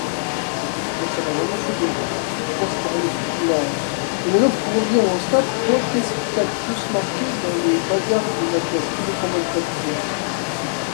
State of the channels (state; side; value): silent; right; digital silence